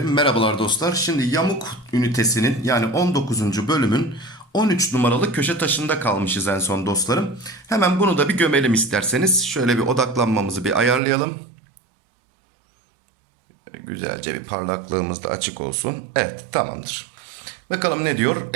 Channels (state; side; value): drops out; left; at 11.0 s